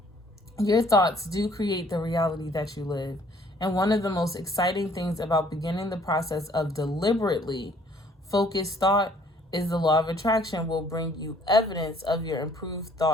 Your thoughts do create the reality that you live. And one of the most exciting things about beginning the process of deliberately focused thought is the law of attraction will bring you evidence of your improved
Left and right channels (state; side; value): normal; both; correlation 0.60